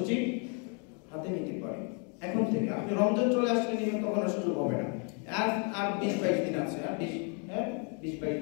নিতে পারি, এখন থেকে। আপনি রমজান চলে আসলে নিবেন, তখন আর সুযোগ হবে না। আর 20-22 দিন আছে, আর 20-22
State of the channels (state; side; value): quieter; right; 38.2 dB